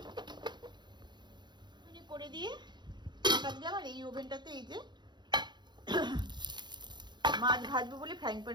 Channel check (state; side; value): late; left; 0.21 ms